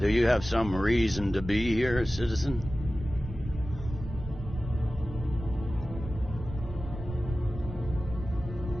you have some reason to be here, citizen?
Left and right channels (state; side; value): noise; right; rumble, 10 dB below the sound